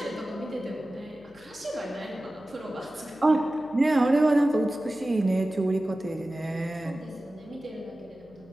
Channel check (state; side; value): noise; left; hum, 25 dB below the sound